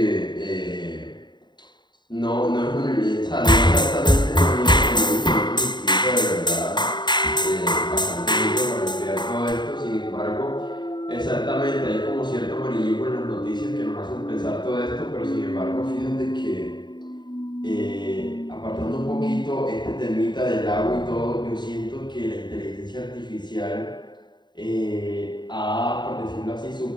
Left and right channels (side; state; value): right; late; 0.21 ms